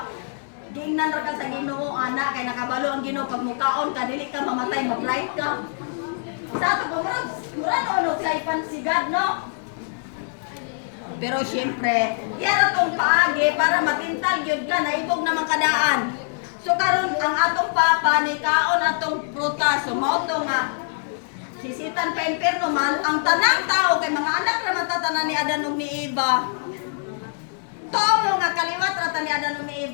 giingnan ra ka sa Ginoo ana kay nakabalo ang Ginoo pag mukaon ka dili ka mamatay, ma-bright ka. Sa ato mura ano kay pansigad no. Pero syempre, yan atong paagi para matintal gyud ka naibog naman kadaan. So karon ang atong papa ni kaon atong prutas so mao to nga sisitan pa imperno man ang tanang tao kay mga anak ra matatanan ni Adan ug ni Eva. Tomo nga kaliwat ra ta ni Adan ug ni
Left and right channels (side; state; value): right; silent; digital silence